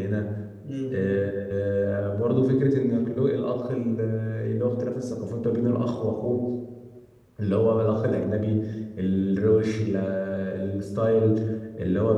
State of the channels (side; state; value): both; identical; correlation 1.00